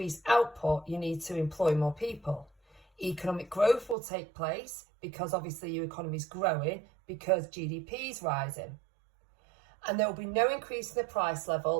output, you need to employ more people. Economic growth will take place because obviously your economy is growing because GDP is rising. And there will be no increase in the price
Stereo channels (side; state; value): left; drops out; at 4.0 s